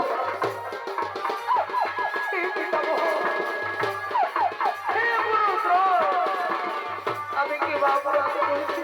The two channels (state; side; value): identical; both; correlation 1.00